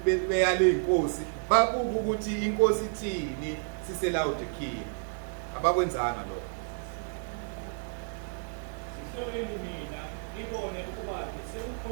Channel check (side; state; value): left; silent; 57 dB below the other